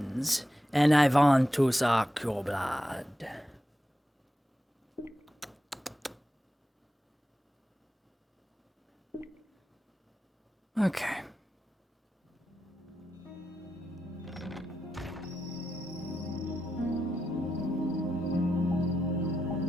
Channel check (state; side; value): normal; both; correlation 0.88